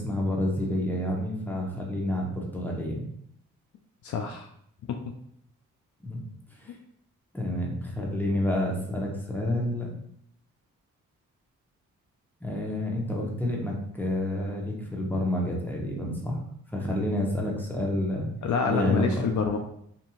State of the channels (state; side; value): normal; both; correlation 0.61